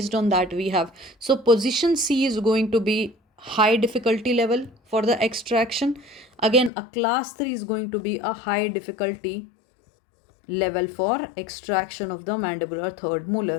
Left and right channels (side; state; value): right; drops out; at 6.7 s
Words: on that we have, so position C is going to be high difficulty level for the extraction. Again, a class 3 is going to be a high difficulty level for extraction of the mandibular third